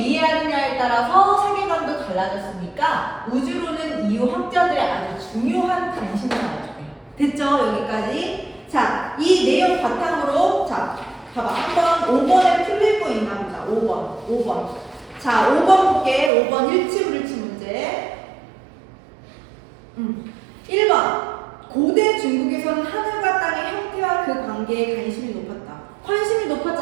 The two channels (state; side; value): drops out; left; at 16.3 s